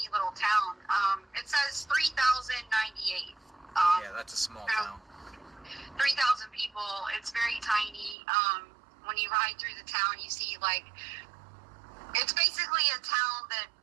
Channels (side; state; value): left; drops out; at 8.2 s